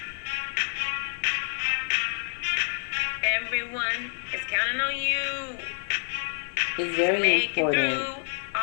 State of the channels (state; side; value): silent; right; 56 dB below the other